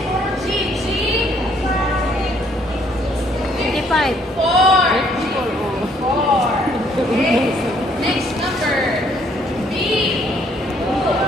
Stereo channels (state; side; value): normal; both; correlation 0.65